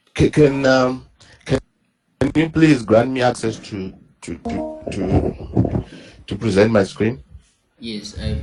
you please grant me access to present my screen? Yes,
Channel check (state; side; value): identical; both; correlation 1.00